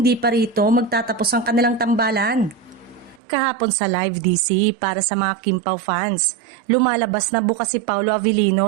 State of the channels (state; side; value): drops out; left; at 3.2 s